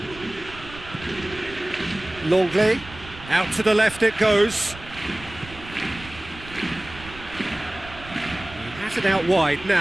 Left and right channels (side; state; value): right; noise; rumble, 16 dB below the sound